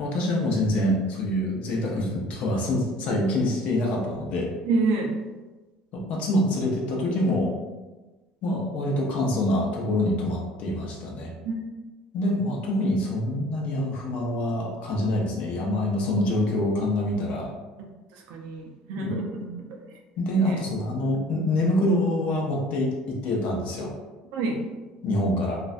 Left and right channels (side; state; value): both; normal; correlation 0.51